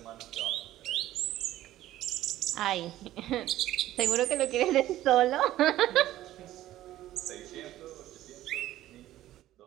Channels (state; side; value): quieter; left; 14.2 dB